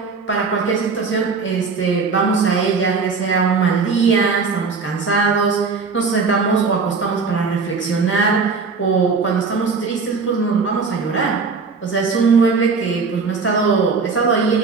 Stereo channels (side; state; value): left; quieter; 4.8 dB